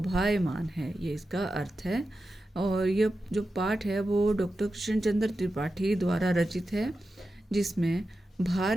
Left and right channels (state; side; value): normal; both; correlation 0.91